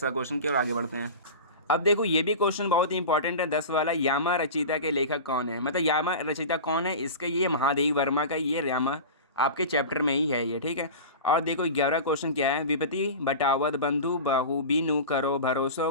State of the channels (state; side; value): inverted; both; correlation -0.30